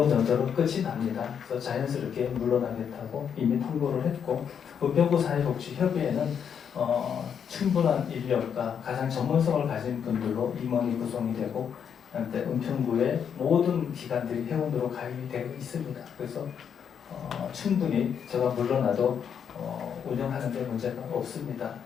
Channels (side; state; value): right; quieter; 7.7 dB